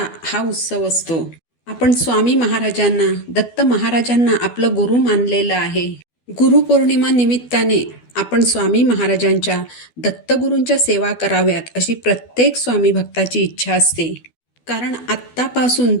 हा उत्सव असतो. आपण स्वामी महाराजांना, दत्त महाराजांना आपलं गुरु मानलेलं आहे. गुरुपौर्णिमा निमित्ताने आपण स्वामी महाराजांच्या, दत्तगुरूंच्या सेवा कराव्यात अशी प्रत्येक स्वामी भक्ताची इच्छा असते. कारण आत्तापासून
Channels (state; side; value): late; right; 12 ms